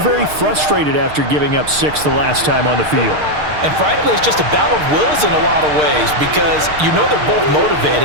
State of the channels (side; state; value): left; late; 6.6 ms